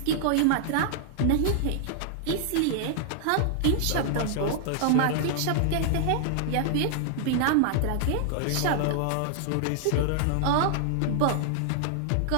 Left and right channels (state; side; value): different; both; correlation -0.01